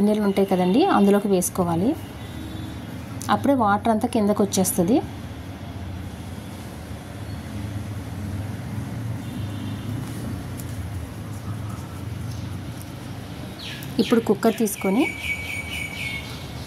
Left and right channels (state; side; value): identical; both; correlation 1.00